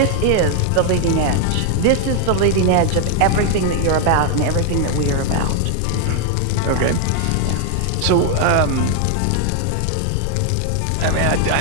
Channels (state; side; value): different; both; correlation 0.00